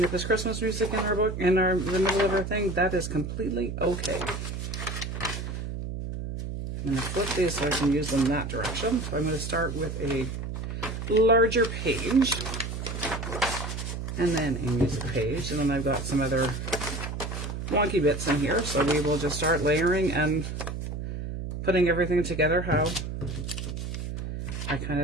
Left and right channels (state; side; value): noise; right; hum, 5 dB below the sound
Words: if there's Christmas music in our book, in the middle of our thing, that is completely okay. I'm going to flip these so I can use them that direction. So I'm going to start with a larger page, and then a music page, and then I've got some other wonky bits in here, so we will just start layering and putting everything together how I kind